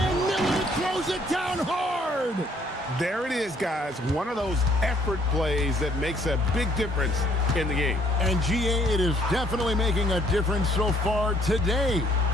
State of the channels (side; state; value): both; normal; correlation 0.64